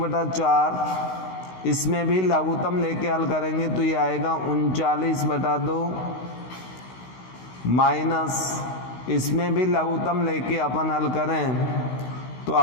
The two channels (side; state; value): right; late; 16 ms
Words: इसमें भी लघुत्तम लेके हल करेंगे तो ये आएगा 39/2 माइनस, इसमें भी लघुत्तम लेके अपन हल करें तो